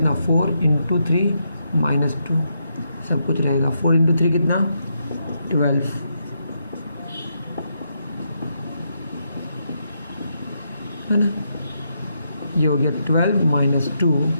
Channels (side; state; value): both; inverted; correlation -0.80